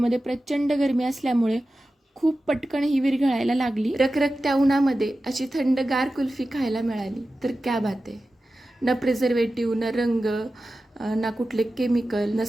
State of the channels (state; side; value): normal; both; correlation 0.94